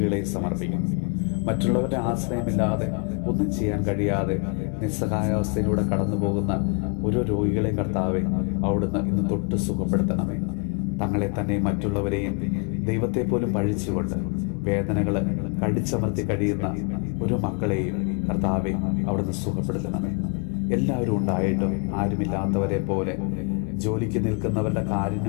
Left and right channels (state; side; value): quieter; right; 35.8 dB